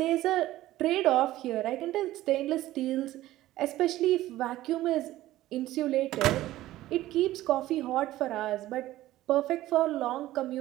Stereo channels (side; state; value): left; quieter; 15.4 dB